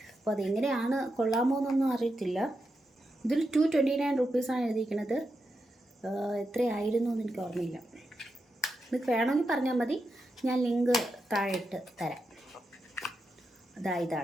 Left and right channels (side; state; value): both; normal; correlation 0.86